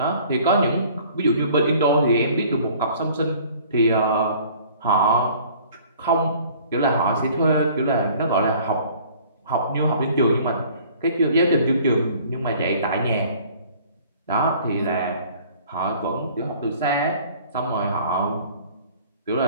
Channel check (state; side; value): inverted; both; correlation -0.52